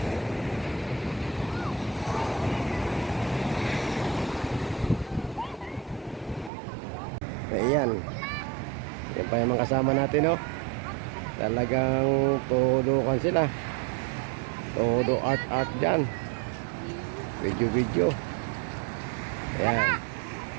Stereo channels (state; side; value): drops out; left; at 6.5 s